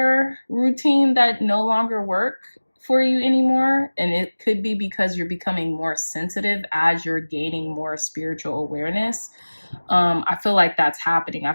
routine that no longer work for you anymore. And it could be because you're becoming more sensitive as you're gaining more spiritual awareness. I feel like that's happening. I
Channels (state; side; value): inverted; both; correlation -1.00